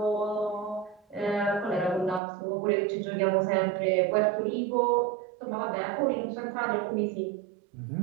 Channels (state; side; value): drops out; left; at 2.2 s